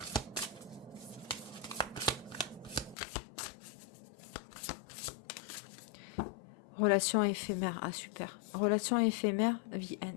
Relation éphémère. Ah, super. Relation éphémère, the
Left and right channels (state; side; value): drops out; right; at 3.0 s